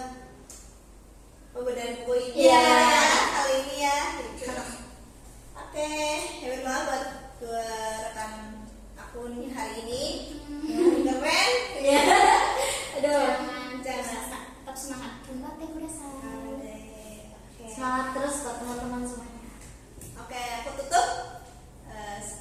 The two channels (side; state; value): both; identical; correlation 1.00